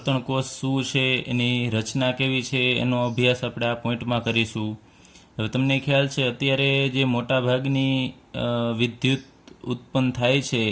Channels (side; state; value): both; identical; correlation 1.00